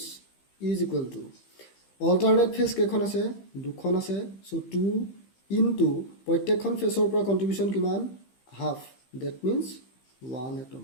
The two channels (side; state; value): right; late; 15 ms